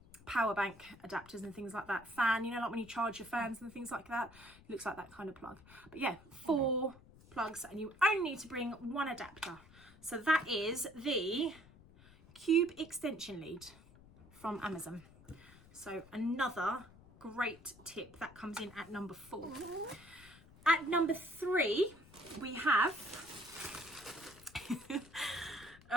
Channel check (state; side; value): noise; left; rumble, 22 dB below the sound